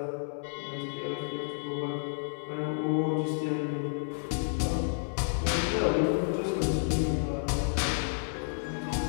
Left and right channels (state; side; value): silent; right; 57 dB below the other